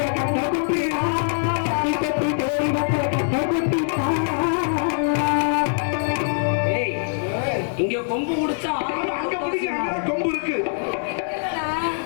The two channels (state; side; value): silent; right; 62 dB below the other